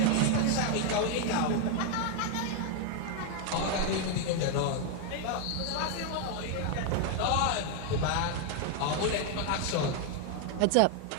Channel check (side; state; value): both; different; correlation 0.01